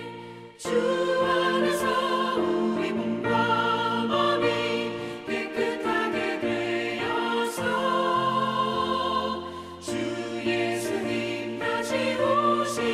주 안에서 우리 몸과 마음이 깨끗하게 되어서 주 예수님 다시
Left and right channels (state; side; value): identical; both; correlation 1.00